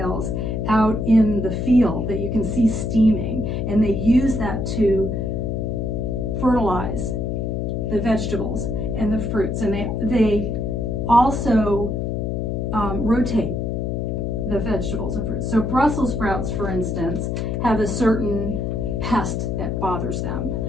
out in the field that you can see steaming, and they use that to fertilize the vegetables and the fruits. And they also rotate the vegetables and fruits. So Brussels sprouts, for instance, have a certain pest that bothers them.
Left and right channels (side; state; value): left; noise; hum, 1 dB below the sound